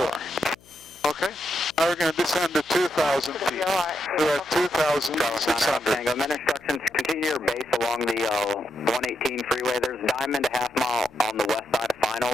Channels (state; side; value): noise; left; hum, 27 dB below the sound